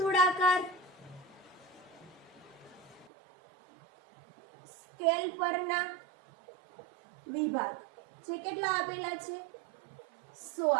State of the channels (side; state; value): left; drops out; at 3.1 s